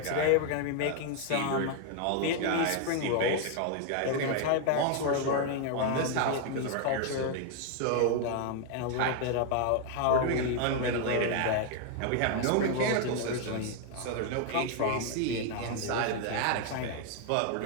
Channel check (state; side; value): different; both; correlation 0.00